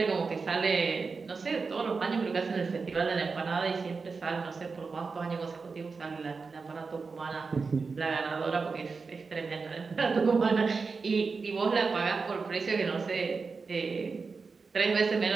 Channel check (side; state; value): left; quieter; 4.6 dB